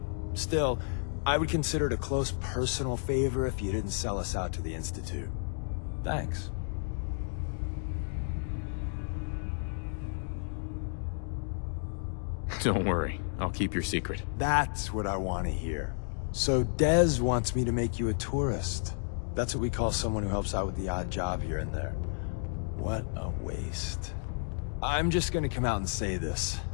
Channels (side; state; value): right; silent; 57 dB below the other